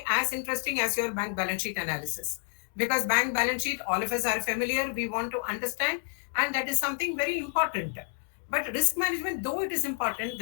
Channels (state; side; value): silent; right; 58 dB below the other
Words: as interesting as your bank balance sheet analysis. Because bank balance sheet, all of us are familiar, we want to understand, and that is something very important. But risk management, though it is important,